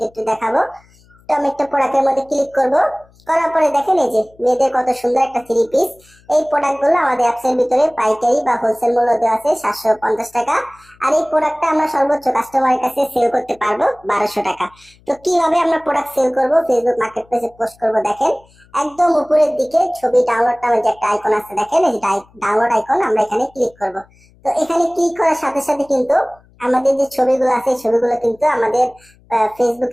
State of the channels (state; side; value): noise; left; hum, 30 dB below the sound